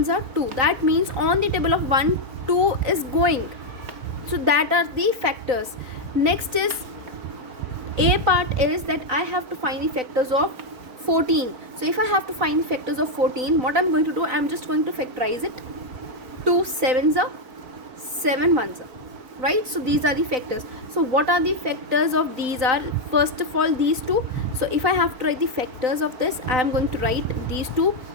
are 2. That means on the table of 1, 2 is going. So that are the factors. Next is A part is that I have to find the factors of 14. So if I have to find the factors of 14, what I'm going to do, I'm just going to factorize it. 2 sevens are, 7 ones are, right? So these are the factors. So what are the factors of these are, first of all, these two. So if I have to write the factors of this, I am going to write these two,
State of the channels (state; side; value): late; left; 4.0 ms